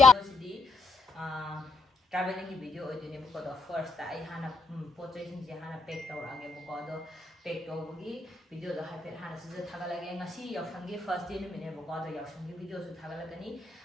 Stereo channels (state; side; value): quieter; right; 3.7 dB